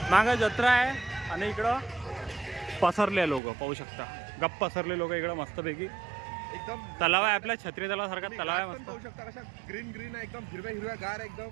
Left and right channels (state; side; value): drops out; left; at 3.4 s